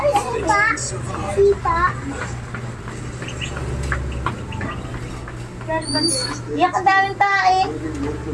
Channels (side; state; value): both; identical; correlation 1.00